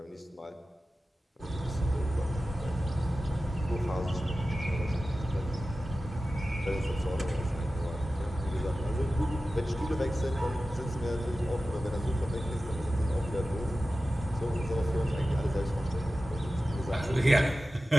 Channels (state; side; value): normal; both; correlation 0.95